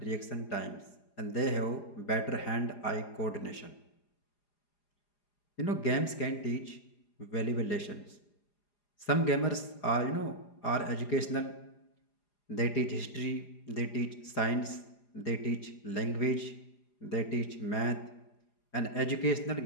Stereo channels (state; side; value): late; right; 4.9 ms